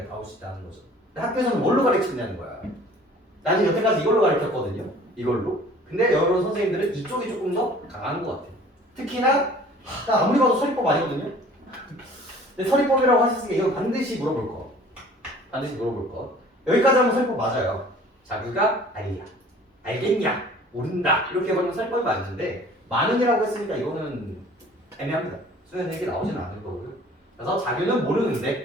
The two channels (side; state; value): both; normal; correlation 0.50